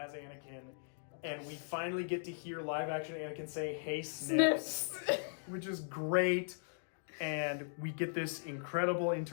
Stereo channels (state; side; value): silent; right; digital silence